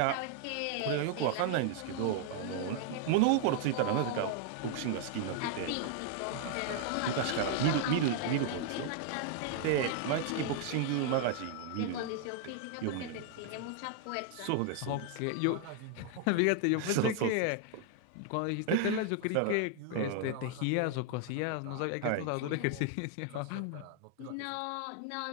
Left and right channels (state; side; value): different; both; correlation 0.00